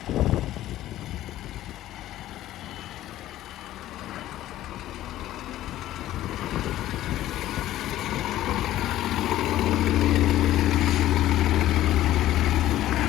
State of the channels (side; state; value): right; quieter; 14.0 dB